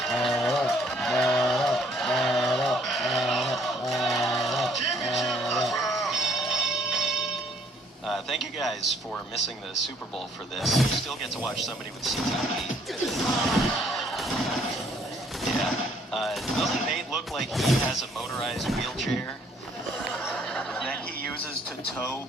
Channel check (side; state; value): both; normal; correlation 0.63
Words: Thank you guys for missing the Super Bowl for this. You still get to watch somebody with CTE. Yeah. Doesn't Nate look like he has a motorized wheelchair that he uses to tow